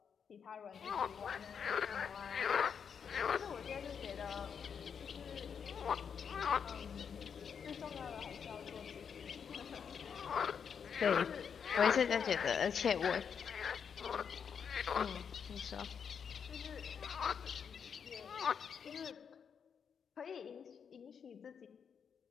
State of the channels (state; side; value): quieter; right; 7.0 dB